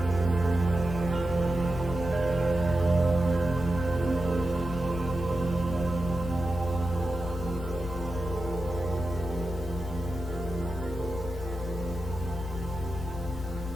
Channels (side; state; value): both; normal; correlation 0.91